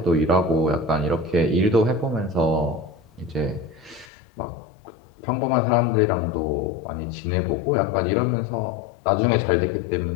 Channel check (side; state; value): right; drops out; at 4.0 s